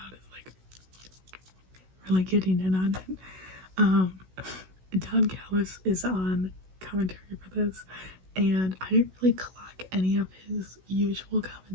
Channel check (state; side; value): late; left; 16 ms